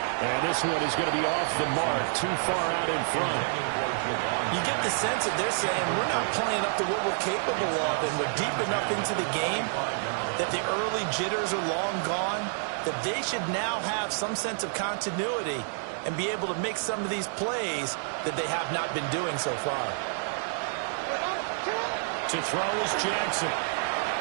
And this one is going to be off the mark, too far out in front. You get the sense that they're saying we're not playing up to what we're capable of, and we're deep enough into the game that the early jitters are long gone, that they should now have some sense of continuity and be able to make some of these plays that they have not been doing so far. To throw is Jackson.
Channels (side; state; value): left; silent; digital silence